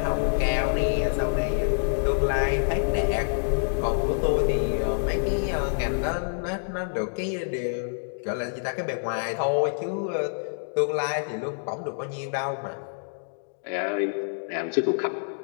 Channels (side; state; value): right; silent; digital silence